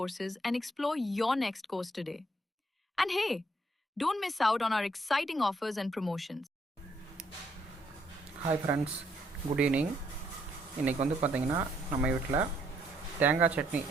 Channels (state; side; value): normal; both; correlation 0.71